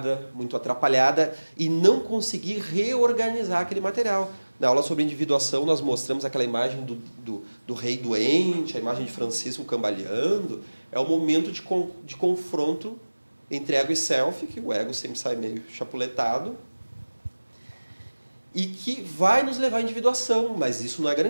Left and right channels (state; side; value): inverted; both; correlation -1.00